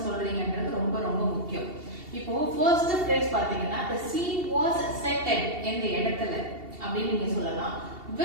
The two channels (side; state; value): left; late; 2.7 ms